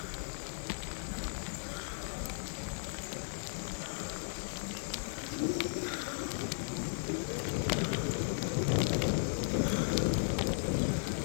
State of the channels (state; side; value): silent; right; digital silence